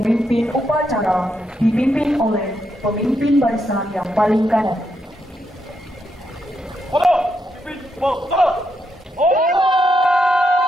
upacara dipimpin oleh pemimpin barisan yang paling kanan.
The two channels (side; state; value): both; normal; correlation 0.81